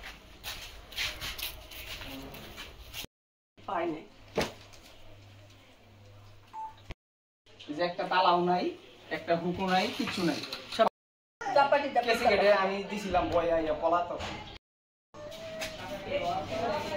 পাইনি এই যে একটা তালাও নাই একটা হুকু নাই কিছু নাই সব চাপাটি কেসে কেটে আমি দিছিলাম বয়া ইয়া পলাতক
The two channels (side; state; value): both; identical; correlation 1.00